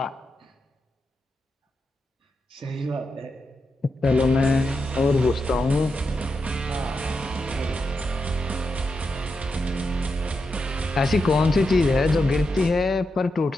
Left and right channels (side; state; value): both; normal; correlation 0.86